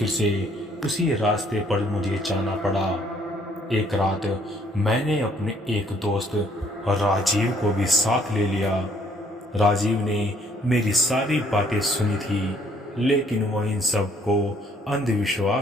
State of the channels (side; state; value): both; normal; correlation 0.63